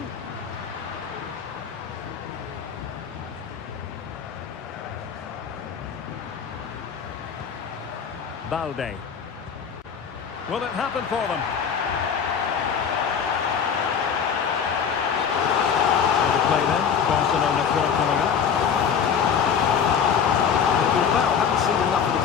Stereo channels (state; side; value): quieter; right; 7.2 dB